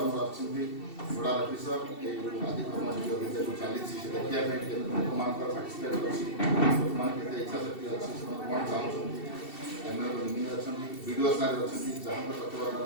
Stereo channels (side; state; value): right; late; 2.7 ms